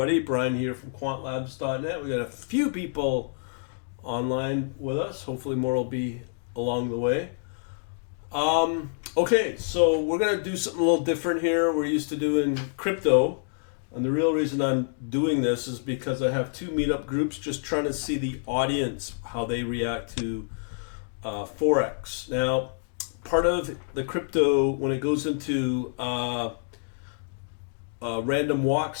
Brian here from quantlabs.net. We got a few people online with us. Hopefully more will be along the way. Okay, so we're going to do something a little different here. We're used to doing crypto, and the real reason I'm doing this is because I have two meetup groups just trying to see the audience, how they react to forex. Now, part of the crypto, when it goes into random walk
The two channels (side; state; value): right; silent; digital silence